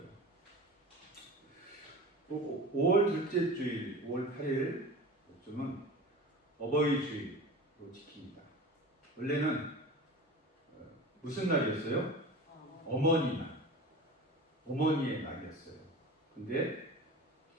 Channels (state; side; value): normal; both; correlation 0.35